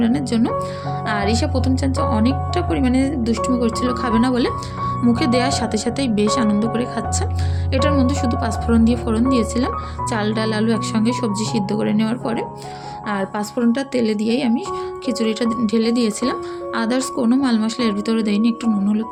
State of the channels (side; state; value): both; identical; correlation 1.00